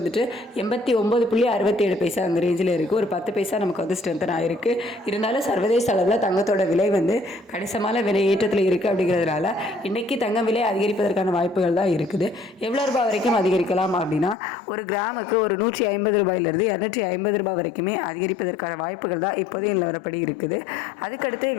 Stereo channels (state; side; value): drops out; right; at 14.4 s